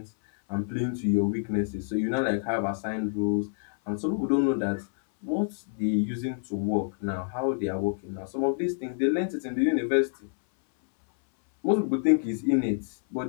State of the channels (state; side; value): silent; right; 60 dB below the other